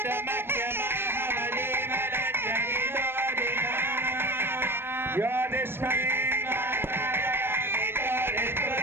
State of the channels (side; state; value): left; late; 0.11 ms